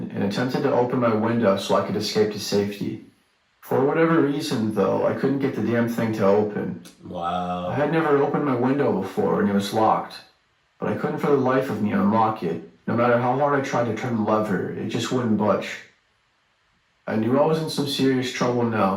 and attempted to open my window so I could escape to safety. For whatever reason, though, I couldn't get the damn thing to open. Wow. I had never opened my window before and it was locked, but I couldn't for the life of me unlock it. No matter how hard I tried to turn the lever, it just wouldn't budge. I knew I was in some serious trouble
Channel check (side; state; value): both; identical; correlation 1.00